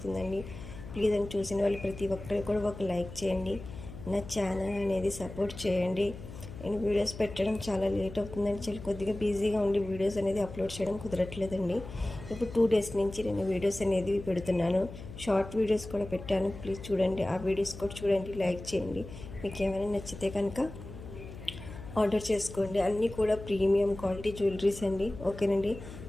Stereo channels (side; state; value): left; noise; hum, 13 dB below the sound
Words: ప్లీజ్ అని చూసిన వాళ్ళు ప్రతి ఒక్కరు కూడా ఒక లైక్ చేయండి. నా ఛానల్ అనేది సపోర్ట్ చేయండి. నేను వీడియోస్ పెట్టడం చాలా లేట్ అవుతుందని చాలా కొద్దిగా బిజీగా ఉండి వీడియోస్ అనేది అప్లోడ్ చేయడం కుదరట్లేదండి. ఇప్పుడు 2 డేస్ నుంచి నేను వీడియోస్ అనేది పెడుతున్నాను. షార్ట్ వీడియోస్ కూడా పెట్టాను, ప్లీజ్ చూడండి. ఆ వీడియోస్ కూడా చూడండి, లైక్ చేయండి. మీకు ఏమైనా నచ్చితే కనుక ఆర్డర్ చేసుకోండి. అన్నీ కూడా ప్రీమియం క్వాలిటీ జ్యువెలరీస్ అండి, ఓకేనండి.